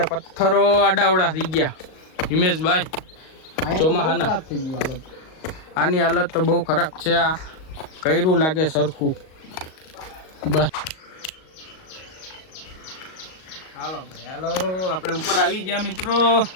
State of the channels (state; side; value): late; right; 38 ms